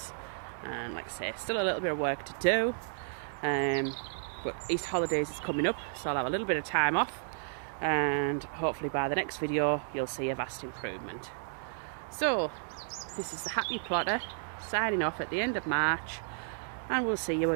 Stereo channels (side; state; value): left; silent; digital silence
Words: and like I say, still a little bit of work to do, but Easter holidays is coming up, so I'll have a little bit of time off, and hopefully by the next video you'll see a vast improvement. So this is the Happy Plotter signing off at the end of March. and we'll see you